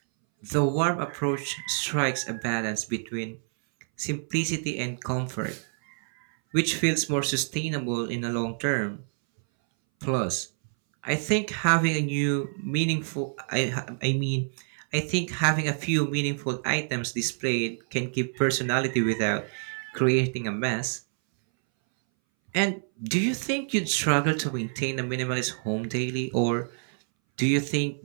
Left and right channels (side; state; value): left; silent; 60 dB below the other